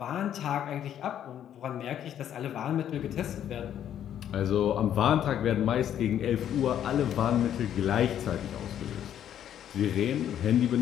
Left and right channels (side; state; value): right; quieter; 10.3 dB